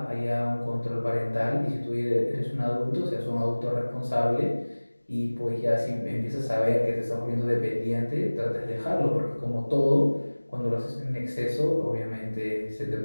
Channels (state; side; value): inverted; both; correlation -1.00